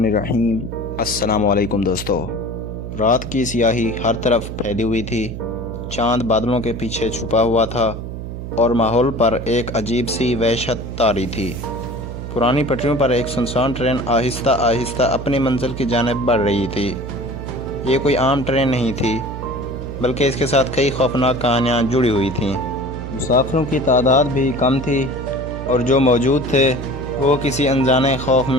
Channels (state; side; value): noise; right; hum, 8 dB below the sound